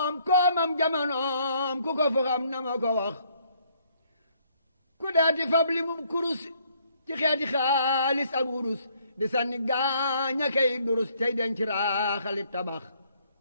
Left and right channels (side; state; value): both; inverted; correlation -0.66